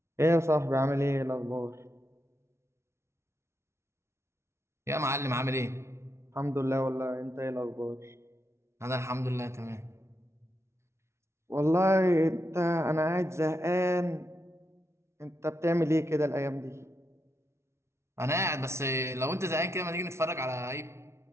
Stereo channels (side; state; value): left; late; 0.13 ms